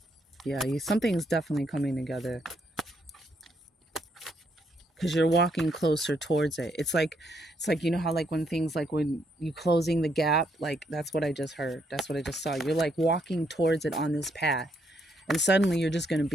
Yeah, something's definitely coming together, because you're walking closer towards it. It's like how, like, when things, like when you closing the gap, like, that's what I just heard. That's what I just saw. You're like walking towards it on this path, and suddenly you're just going to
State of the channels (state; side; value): normal; both; correlation 0.74